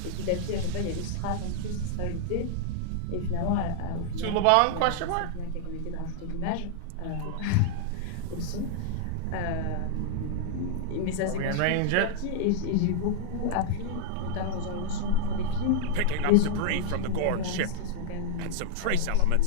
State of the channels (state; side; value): different; both; correlation -0.01